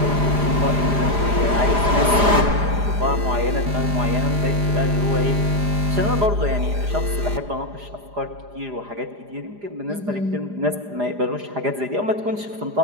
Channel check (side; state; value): left; late; 4.9 ms